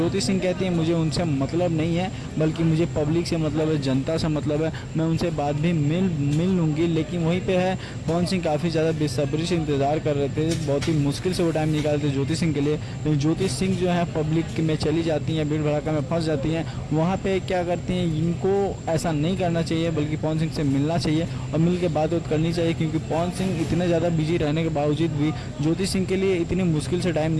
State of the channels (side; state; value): both; identical; correlation 1.00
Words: सिंह कहती है मुझे उनसे मतलब नहीं है, बल्कि मुझे पब्लिक से मतलब है, जनता से मतलब है, मैं उनसे बाद भी मिल लूँगी। लेकिन वहीं पे है पवन सिंह काफ़ी ज़्यादा बेसब्री से इंतज़ार कर रहे थे, बहुत ही मुश्किल से वो टाइम निकालते ज्योति सिंह के लिए। लेकिन ज्योति सिंह जो है पब्लिक में चली जाती हैं, भीड़ भड़ाका में फंस जाती हैं। वहाँ पे क्या करती हैं, इनको ऐसा नहीं करना चाहिए, बल्कि पवन सिंह से मिलना चाहिए और मिल के बात करनी चाहिए। क्योंकि पवन सिंह इतने ज़्यादा बिजी रहने के बावजूद भी ज्योति सिंह के लिए इतनी मुश्किल से टाइम